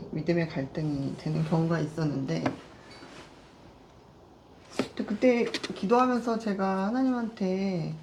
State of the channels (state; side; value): identical; both; correlation 1.00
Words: 갈등이 되는 경우가 있었는데, 그때 기도하면서 제가 하나님한테